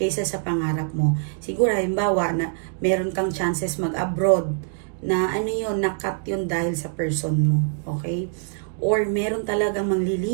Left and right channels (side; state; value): left; silent; digital silence